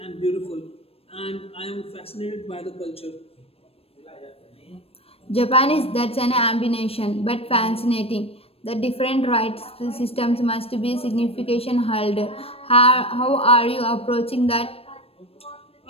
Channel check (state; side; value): late; right; 0.28 ms